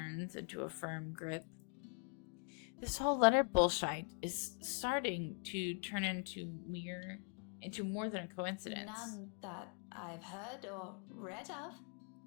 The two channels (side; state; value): right; quieter; 38.6 dB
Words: into a firm grip. This whole letter bullshit is starting to turn into more than a coincidence. None that I've heard or read of.